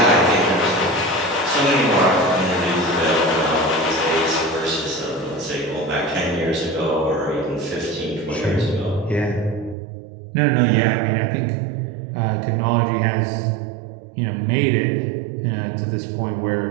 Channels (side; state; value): left; drops out; at 9.8 s